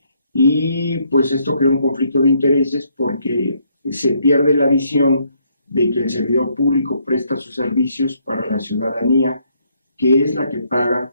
Y pues esto crea un conflicto de intereses porque se pierde la visión de que el servidor público presta sus servicios para la ciudadanía, que es la que paga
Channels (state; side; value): inverted; both; correlation -0.71